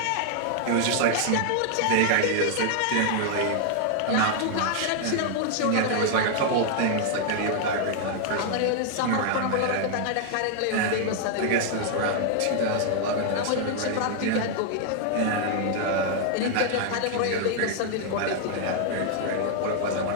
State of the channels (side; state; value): both; different; correlation 0.00